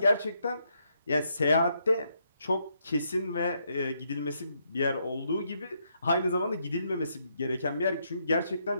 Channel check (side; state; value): both; inverted; correlation -0.77